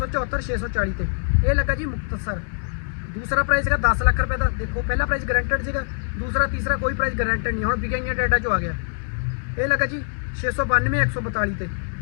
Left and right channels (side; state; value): right; silent; digital silence